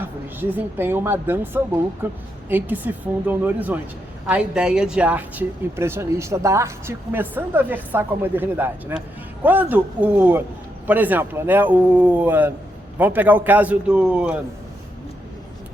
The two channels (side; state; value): both; normal; correlation 0.81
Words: desempenham uma dança louca em que se fundam no horizonte. A ideia de arte impressionista, da arte começando a versar com a modernidade, né? Quando por exemplo, né, vamos pegar o caso do